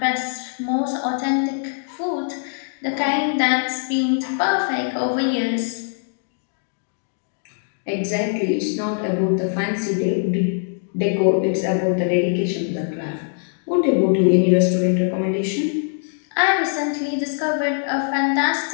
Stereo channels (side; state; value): right; silent; 64 dB below the other